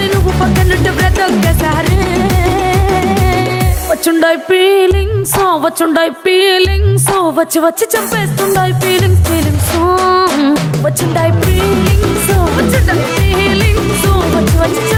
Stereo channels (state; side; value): identical; both; correlation 1.00